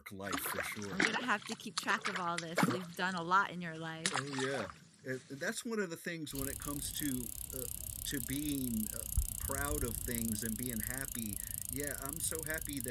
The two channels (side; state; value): both; identical; correlation 1.00